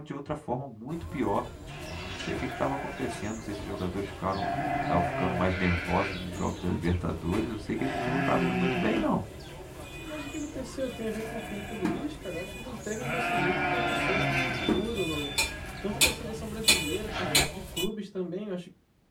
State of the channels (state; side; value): identical; both; correlation 1.00